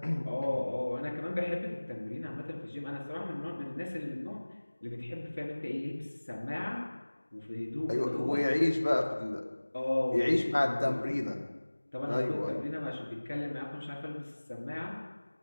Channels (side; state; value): both; inverted; correlation -1.00